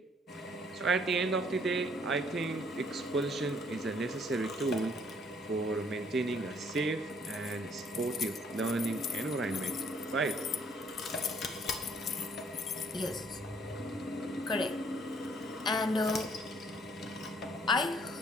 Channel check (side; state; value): both; normal; correlation 0.64